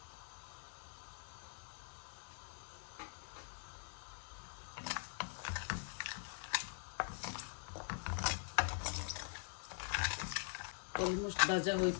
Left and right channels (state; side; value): silent; right; digital silence